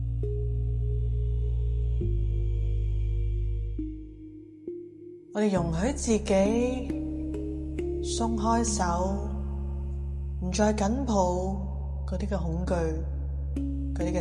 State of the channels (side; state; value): both; identical; correlation 1.00